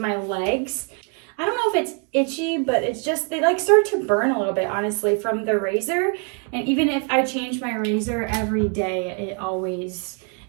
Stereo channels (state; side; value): quieter; left; 38.1 dB